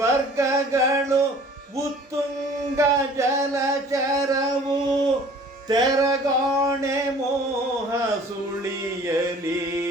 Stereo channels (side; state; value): both; normal; correlation 0.50